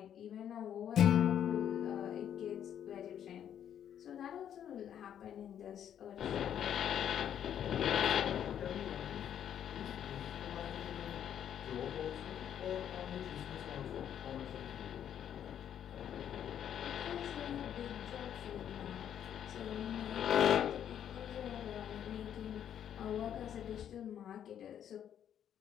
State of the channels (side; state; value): right; quieter; 9.7 dB